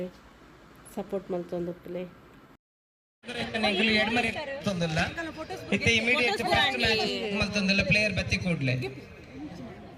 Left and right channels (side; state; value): both; identical; correlation 1.00